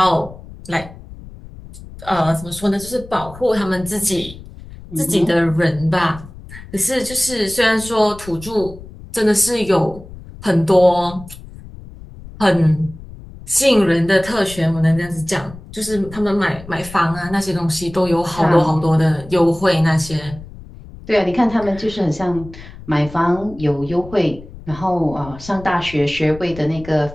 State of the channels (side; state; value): left; noise; rumble, 16 dB below the sound